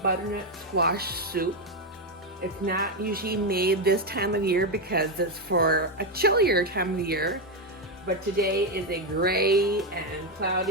butternut squash soup. It's not usually made this time of year because it's for a chillier time of year, but today is a gray and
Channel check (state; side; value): normal; both; correlation 0.07